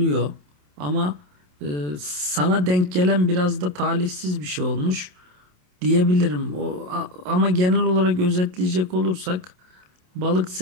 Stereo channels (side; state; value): left; late; 27 ms